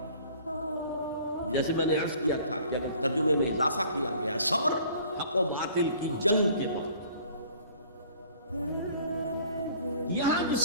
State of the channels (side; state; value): both; inverted; correlation -0.52